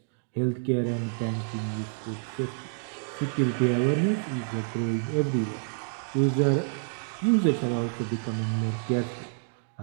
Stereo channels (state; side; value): silent; left; digital silence